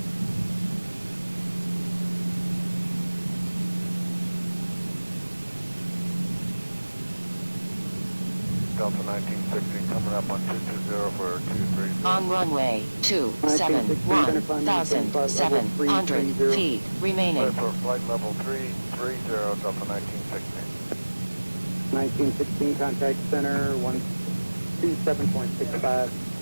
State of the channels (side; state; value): both; inverted; correlation -1.00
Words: Delta 1960 coming up on 220 for 230. On runway 271, 1,700 feet remaining. Clear for flight level 330, Delta 1960. 1916, contact center, 127.65.